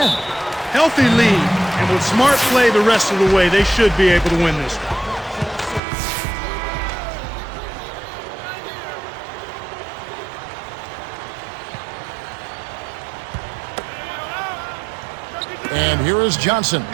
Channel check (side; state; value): left; drops out; at 5.8 s